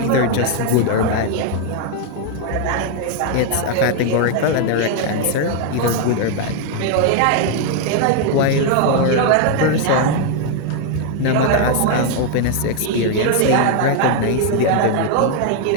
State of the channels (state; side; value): different; both; correlation 0.00